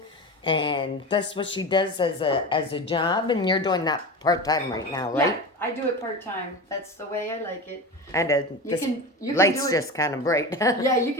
and that's what she does as a job. And you're doing that part time right now, right? Yeah, I do it part time. That's the way I like it. And You can lights do it. just kind of bright. Yeah, you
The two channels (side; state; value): both; normal; correlation 0.27